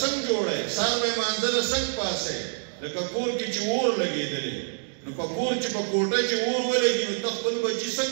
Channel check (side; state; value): left; silent; digital silence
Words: جوړی؟ سهار به یې مانځه له څنګه پاسئ؟ لکه کور کې چې اور لګېدلی نو په کور چې په کوټه چې اور ولګي نو ته خپل بچي